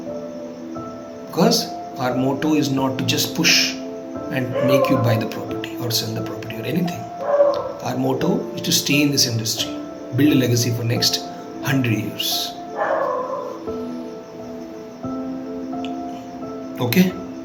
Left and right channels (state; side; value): identical; both; correlation 1.00